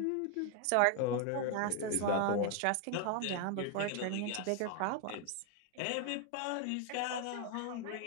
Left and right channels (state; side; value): different; both; correlation 0.01